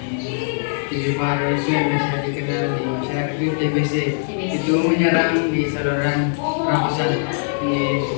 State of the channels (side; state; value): right; silent; digital silence